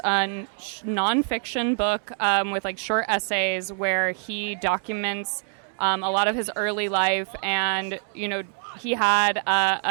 nonfiction book with like short essays where he documents a lot of his early life, and he had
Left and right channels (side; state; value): left; silent; 55 dB below the other